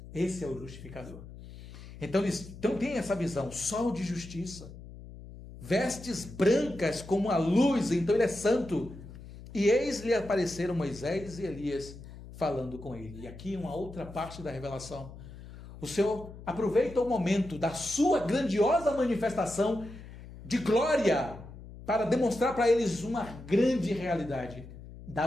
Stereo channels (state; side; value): noise; left; hum, 15 dB below the sound